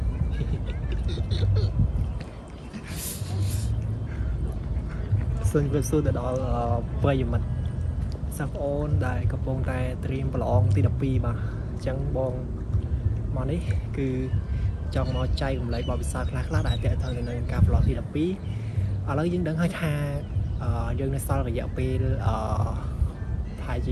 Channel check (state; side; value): identical; both; correlation 1.00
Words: សូមជម្រាបសួរទៅដល់ប្រិយមិត្តសិស្សប្អូនដែលកំពុងតែត្រៀមប្រឡងទី12បាទអញ្ចឹងបងមកនេះគឺចង់មកចែករំលែកបទពិសោធន៍ខ្លះៗដែលទាក់ទងនឹងការប្រឡងទី12ឥឡូវយើងដឹងហើយថាយើងនៅសល់រយៈពេលប្រហែលជ